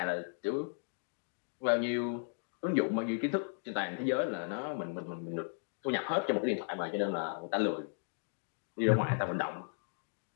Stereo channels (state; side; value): silent; right; digital silence